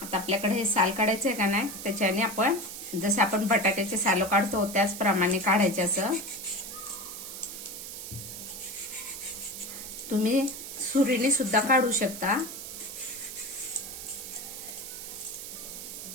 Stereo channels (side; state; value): right; noise; hiss, 9 dB below the sound